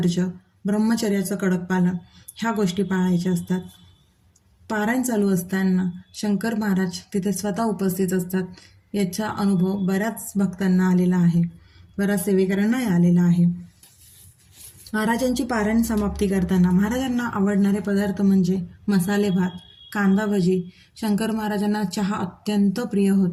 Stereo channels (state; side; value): identical; both; correlation 1.00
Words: ब्रह्मचर्याचं कडक पालन ह्या गोष्टी पाळायच्या असतात. पारायण चालू असताना शंकर महाराज तिथे स्वतः उपस्थित असतात. याचा अनुभव बऱ्याच भक्तांना आलेला आहे, बऱ्याच सेवेकरांनाही आलेला आहे. महाराजांची पारायण समाप्ती करताना महाराजांना आवडणारे पदार्थ म्हणजे मसाले भात, कांदा भजी. शंकर महाराजांना चहा अत्यंत प्रिय